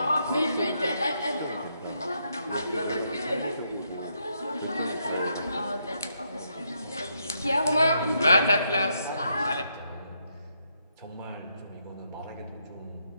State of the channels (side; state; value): both; inverted; correlation -0.78